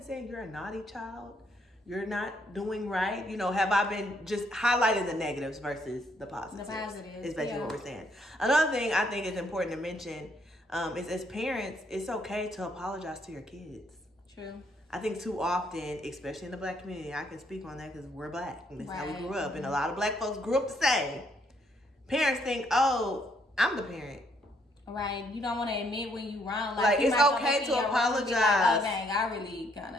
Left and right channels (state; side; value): normal; both; correlation 0.70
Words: saying you're a naughty child? You're not doing right? You know, have I been just highlighting the negatives versus the positives? The positives. Is basically what we're saying. Another thing I think is important to mention is as parents, it's okay to apologize to your kids. True. I think too often, especially in the Black community, I can speak on that because we're Black. And that's how we grew up. And a lot of Black folks grew up the same. Parents think, oh, I'm the parent. Right. You don't want to admit when you wrong. Like it's okay to apologize. Like, oh, dang, I really kind